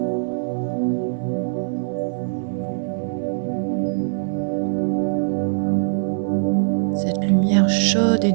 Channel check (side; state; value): left; silent; 60 dB below the other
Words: Cette lumière chaude et